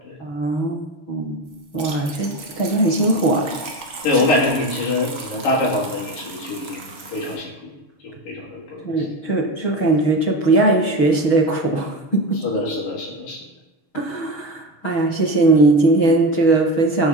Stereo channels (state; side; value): late; right; 6.3 ms